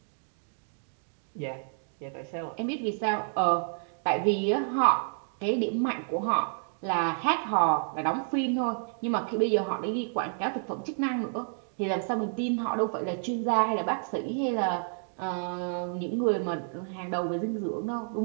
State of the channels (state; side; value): silent; left; digital silence